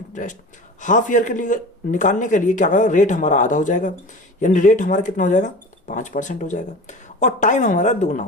हाफ ईयर के लिए निकालने के लिए क्या करेगा, रेट हमारा आधा हो जाएगा। यानी रेट हमारा कितना हो जाएगा, 5% हो जाएगा। और टाइम हमारा दुगना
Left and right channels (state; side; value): normal; both; correlation 0.35